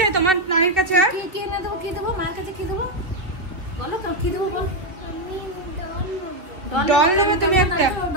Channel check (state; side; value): late; left; 2.9 ms